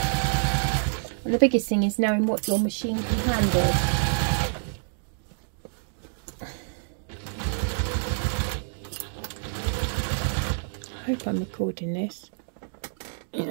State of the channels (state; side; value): silent; left; digital silence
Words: And the biggest thing is knowing what your machine can handle. I hope I'm recording this. Yeah.